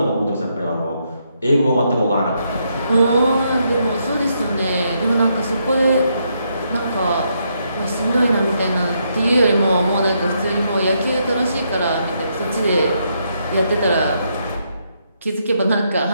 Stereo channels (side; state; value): both; inverted; correlation -0.77